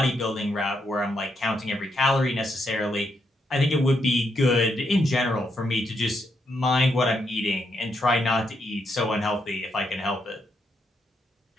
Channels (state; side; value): normal; both; correlation 0.79